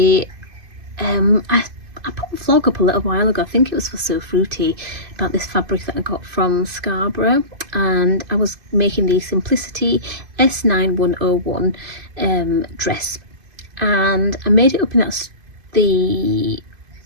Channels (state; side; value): late; left; 2.5 ms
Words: put a vlog up a little while ago, I think it was for So Fruity, about this fabric that I got from Scarborough, and I was making the Simplicity S9101 dress, and I made it up in the